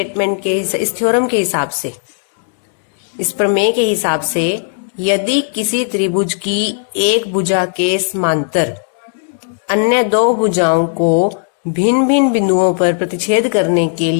के इस थ्योरम के हिसाब से, इस प्रमेय के हिसाब से, यदि किसी त्रिभुज की एक भुजा के समांतर अन्य दो भुजाओं को भिन्न भिन्न बिंदुओं पर प्रतिच्छेद करने के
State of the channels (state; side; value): silent; right; digital silence